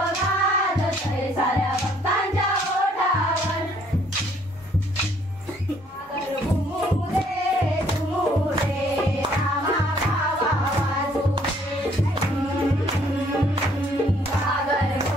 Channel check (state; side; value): normal; both; correlation 0.63